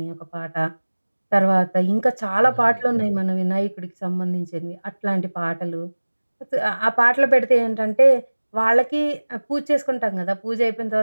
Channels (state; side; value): inverted; both; correlation -1.00